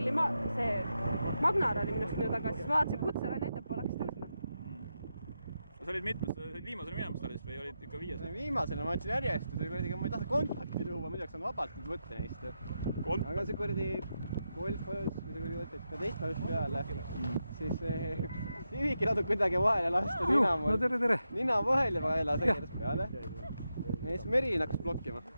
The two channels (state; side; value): inverted; both; correlation -0.87